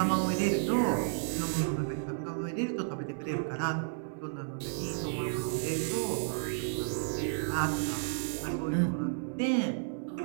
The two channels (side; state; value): left; silent; 56 dB below the other